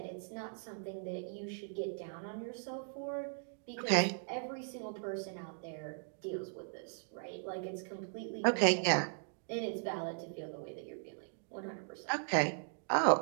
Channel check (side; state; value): left; silent; digital silence